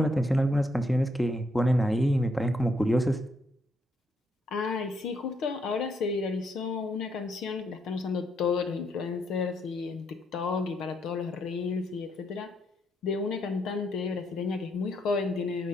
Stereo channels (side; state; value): both; normal; correlation 0.75